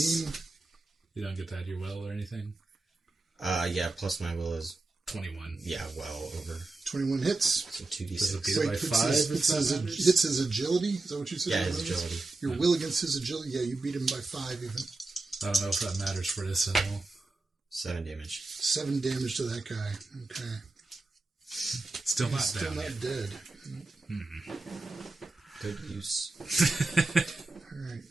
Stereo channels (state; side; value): quieter; left; 3.3 dB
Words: Plus, you don't get that your will or anything? Yeah, plus my will is, 21. yeah, well over. 21 hits. So Does it 2d6. beat it by 5? Hits his agility. Is that what you said? Yeah, his agility. Your will against his agility. Yeah, you beat him by 5 even. I don't know if that matters for this at all. 7 damage. 7 damage to that guy. Okay. Still not Still down not yet. dead. Good use.